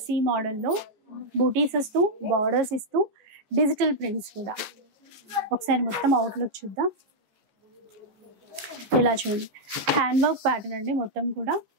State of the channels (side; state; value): left; late; 14 ms